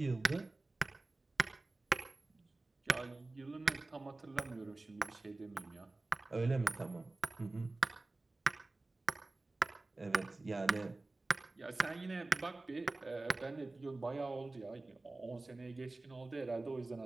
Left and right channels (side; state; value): left; quieter; 3.1 dB